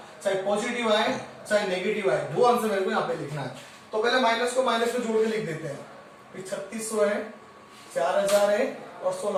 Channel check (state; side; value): identical; both; correlation 1.00